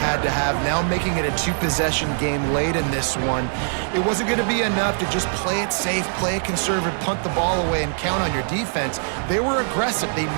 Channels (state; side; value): silent; left; digital silence